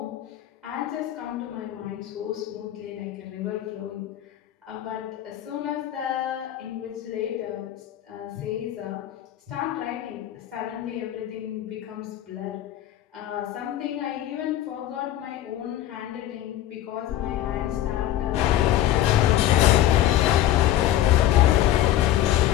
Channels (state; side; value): quieter; right; 12.8 dB